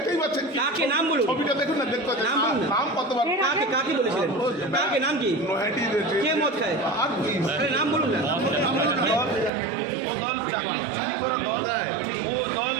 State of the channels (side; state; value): left; drops out; at 9.5 s